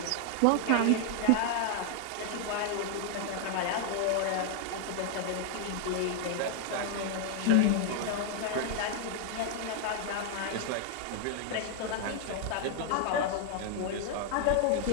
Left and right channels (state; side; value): different; both; correlation 0.00